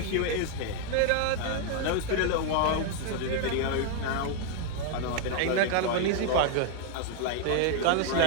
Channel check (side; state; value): both; different; correlation 0.00